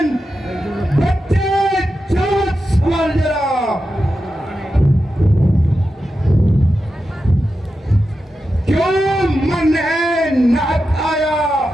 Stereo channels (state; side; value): normal; both; correlation 0.90